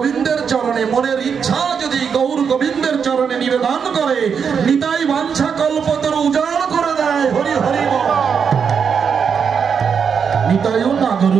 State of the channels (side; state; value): left; quieter; 6.6 dB